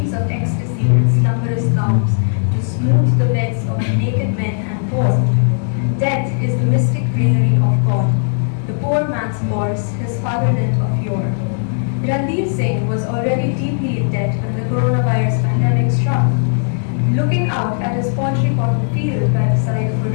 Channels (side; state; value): right; silent; digital silence